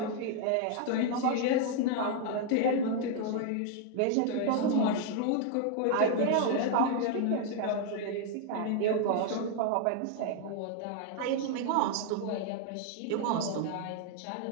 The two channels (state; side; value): different; both; correlation 0.00